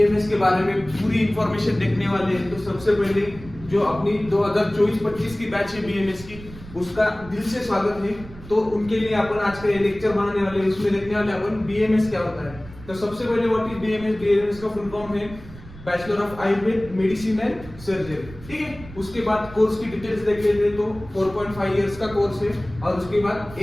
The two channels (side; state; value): right; noise; rumble, 17 dB below the sound